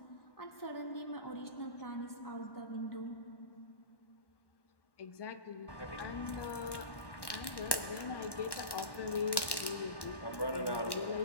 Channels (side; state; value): right; late; 1.1 ms